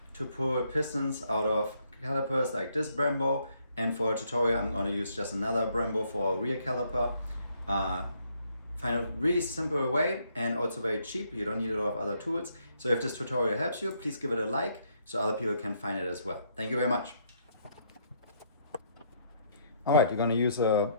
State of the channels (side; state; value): both; inverted; correlation -0.70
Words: to pull pistons out of calipers like this Brembo. And for a tutorial, I'm going to use just another Brembo for a rear caliper. Find a really simple way and also very cheap. You don't need a lot of other tools. So if this tutorial helps you, please give it a like so other people can find it as well. Thank you very much. All right, you're going to use a